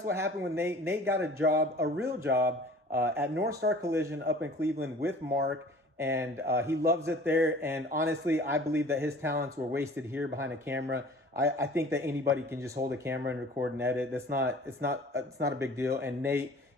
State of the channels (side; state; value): both; normal; correlation 0.47